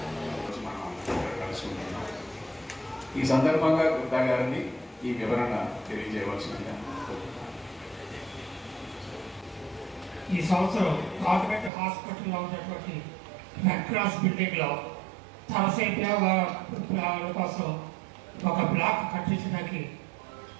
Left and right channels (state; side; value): drops out; left; at 11.7 s